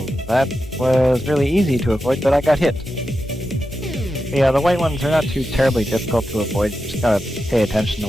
that was really easy to avoid, but I got hit. Yeah, the white ones are not too terribly difficult to avoid. You just gotta pay attention to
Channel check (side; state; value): both; normal; correlation 0.90